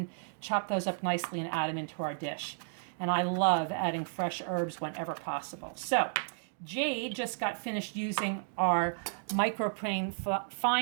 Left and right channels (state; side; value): silent; left; digital silence